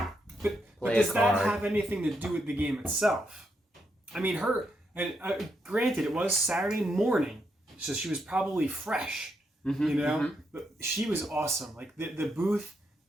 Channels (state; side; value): normal; both; correlation 0.80